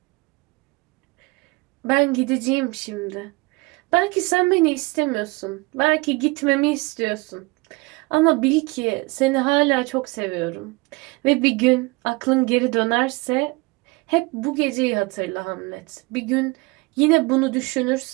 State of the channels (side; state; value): left; quieter; 25.1 dB